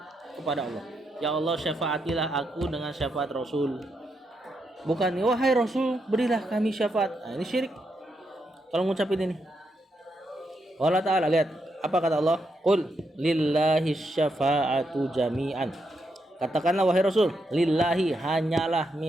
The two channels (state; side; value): normal; both; correlation 0.81